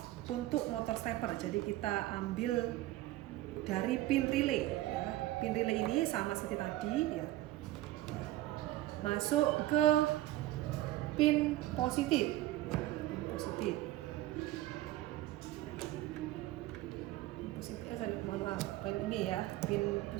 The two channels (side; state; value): left; quieter; 16.0 dB